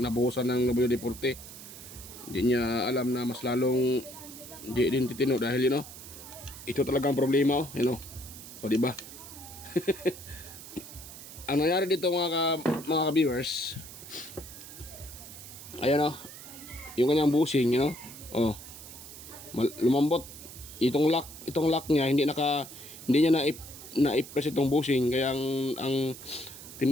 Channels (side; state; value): right; noise; hiss, 14 dB below the sound